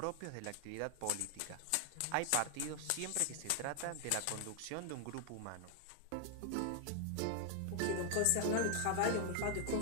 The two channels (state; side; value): different; both; correlation 0.00